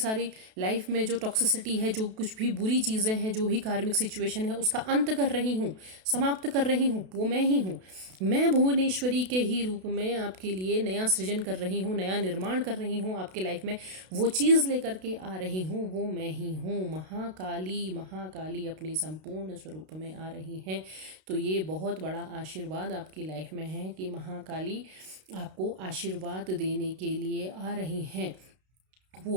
लाइफ में जो टॉक्सिसिटी है, जो कुछ भी बुरी चीज़ें हैं, जो भी कार्मिक सिचुएशन है, उसका अंत कर रही हूँ, समाप्त कर रही हूँ, वो मैं ही हूँ। मैं भुवनेश्वरी के ही रूप में आपके लिए नया सृजन कर रही हूँ, नया निर्माण कर रही हूँ। आपके लाइफ में वो चीज़ लेकर के आ रही हूँ, वो मैं ही हूँ। महाकाली, महाकाली अपने संपूर्ण स्वरूप में आ रही हैं। तो ये बहुत बड़ा आशीर्वाद आपकी लाइफ में है कि महाकाली आपको आशीर्वाद देने के लिए आ रही हैं।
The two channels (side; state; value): left; late; 32 ms